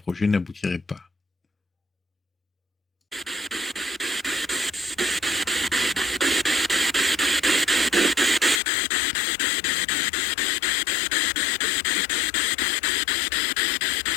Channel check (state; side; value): drops out; right; at 8.6 s